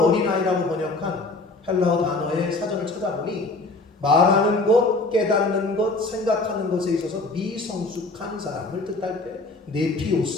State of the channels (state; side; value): quieter; right; 3.3 dB